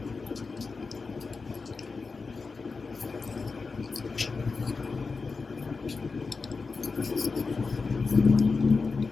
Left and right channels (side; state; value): right; quieter; 4.4 dB